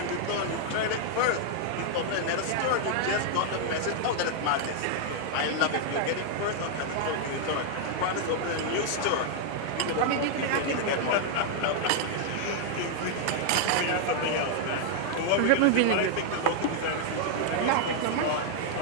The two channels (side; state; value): both; different; correlation 0.00